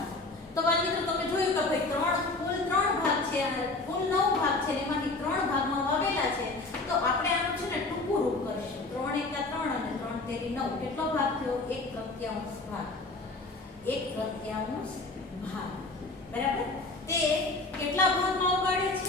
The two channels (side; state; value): right; quieter; 3.3 dB